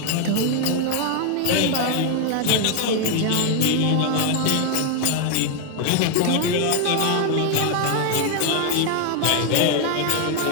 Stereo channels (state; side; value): different; both; correlation 0.00